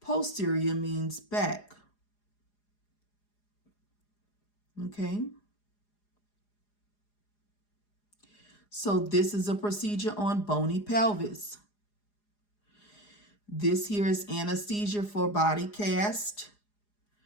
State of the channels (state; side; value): late; right; 4.9 ms